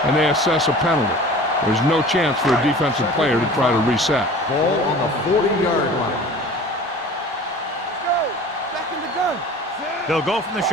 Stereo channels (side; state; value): both; normal; correlation 0.42